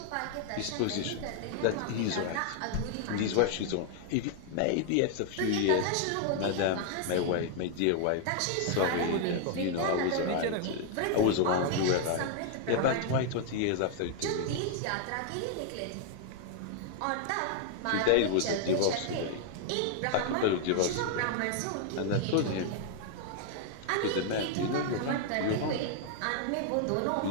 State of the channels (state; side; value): different; both; correlation 0.00